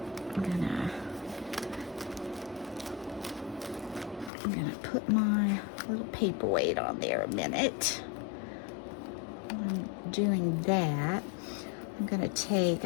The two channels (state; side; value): drops out; right; at 4.3 s